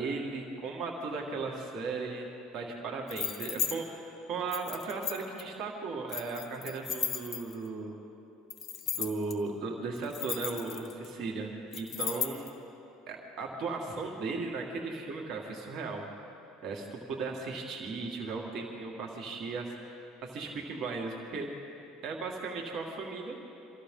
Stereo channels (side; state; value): both; normal; correlation 0.53